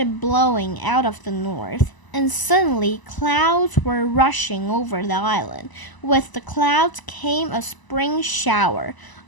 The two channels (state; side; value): late; right; 1.0 ms